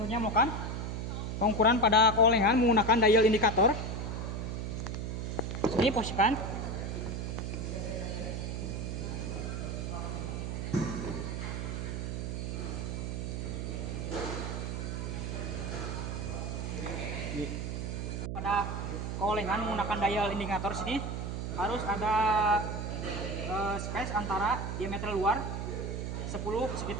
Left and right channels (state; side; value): noise; right; hum, 3 dB below the sound